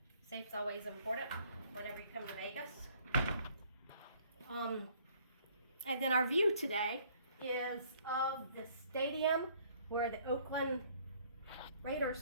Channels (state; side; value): inverted; both; correlation -0.61